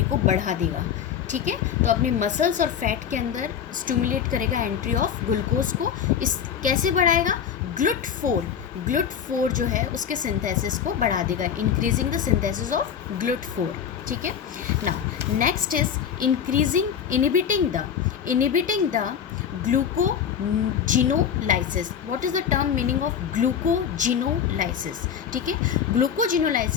को बढ़ा देगा। ठीक है, तो अपनी मसल्स और फैट के अंदर स्टिमुलेट करेगा एंट्री ऑफ ग्लूकोज को। इस कैसे बढ़ाएगा? GLUT4 जो है उसके सिंथेसिस को बढ़ा देगा, increasing the synthesis of GLUT4। ठीक है, now next is inhibiting the glycogenolysis. What is the term meaning of glycogenolysis? ठीक है,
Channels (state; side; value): quieter; right; 8.2 dB